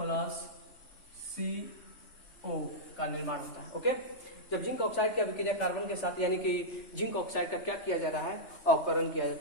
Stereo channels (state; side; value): late; right; 3.4 ms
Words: CO का निर्माण होता है। ओके, जब जिंक ऑक्साइड की अभिक्रिया कार्बन के साथ, यानी कि जिंक ऑक्साइड का क्या किया जा रहा है? अवकरण किया